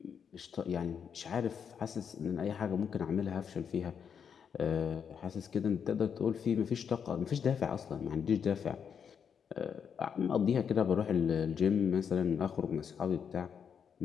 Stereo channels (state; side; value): quieter; right; 7.3 dB